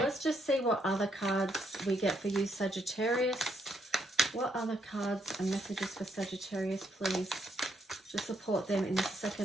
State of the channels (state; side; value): normal; both; correlation 0.74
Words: just see what other cards we get for you, Sagittarius. What other cards and messages for Sagittarius, please? To support them in the